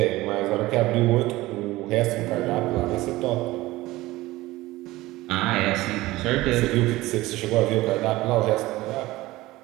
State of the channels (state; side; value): quieter; left; 18.5 dB